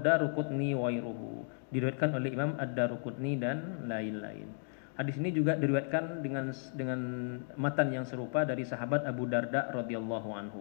Daruqutni wa ghairuhu, diriwayatkan oleh Imam Ad-Daruqutni dan lain-lain. Hadis ini juga diriwayatkan dengan matan yang serupa dari sahabat Abu Darda radhiyallahu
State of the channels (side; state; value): right; silent; digital silence